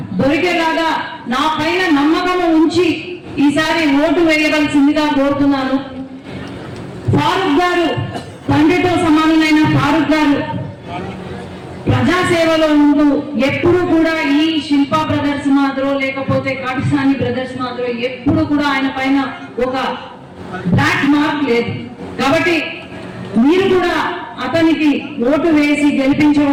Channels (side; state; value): both; identical; correlation 1.00